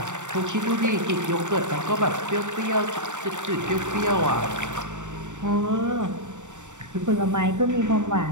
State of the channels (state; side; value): late; left; 0.85 ms